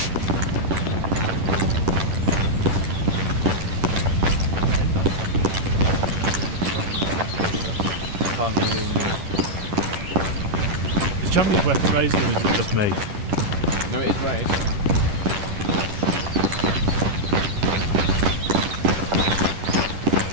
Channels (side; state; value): left; late; 10 ms